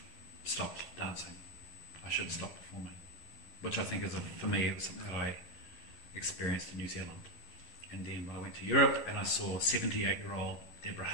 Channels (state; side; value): late; right; 11 ms